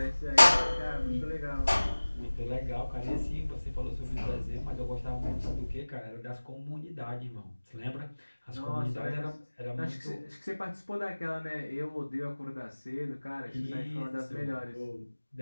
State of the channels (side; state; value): both; inverted; correlation -1.00